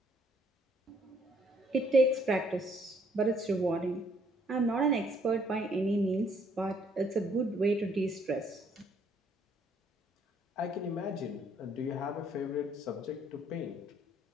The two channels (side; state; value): both; normal; correlation 0.66